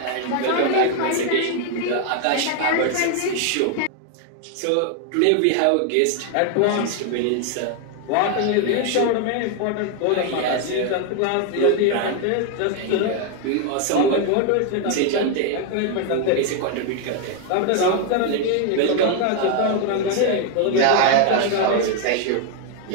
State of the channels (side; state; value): both; different; correlation 0.01